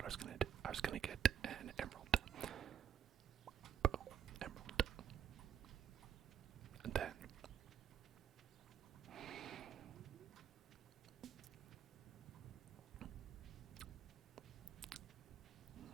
I was gonna do. I was gonna get an emerald. Boom, emerald. And then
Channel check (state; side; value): quieter; left; 9.0 dB